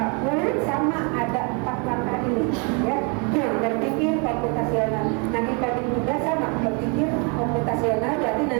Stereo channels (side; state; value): left; quieter; 34.5 dB